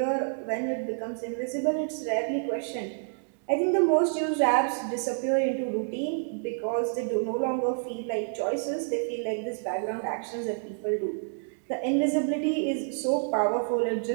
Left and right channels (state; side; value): silent; left; digital silence